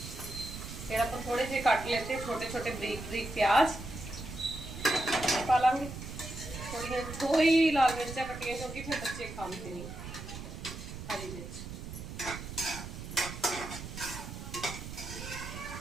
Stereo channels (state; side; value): noise; right; rumble, 9 dB below the sound